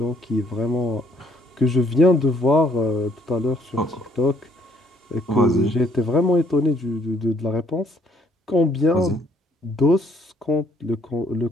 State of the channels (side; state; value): both; normal; correlation 0.66